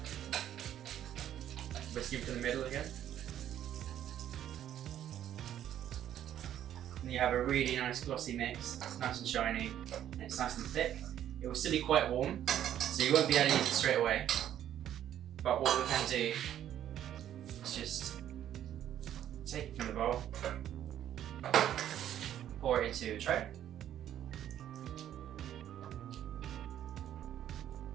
Whisk it to the middle again. And you have a really nice glossy mix. It's nice and shiny, and it's nice and thick. It will still be quite warm, so you won't be able to use it straight away. But what we can do is just take it from the bowl, pour it into a tray.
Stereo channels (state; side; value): quieter; left; 11.0 dB